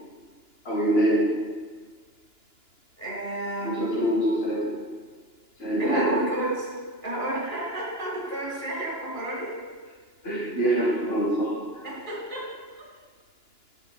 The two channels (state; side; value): late; right; 2.9 ms